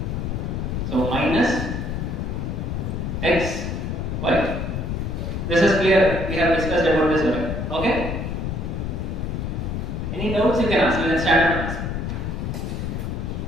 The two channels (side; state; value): left; noise; rumble, 3 dB below the sound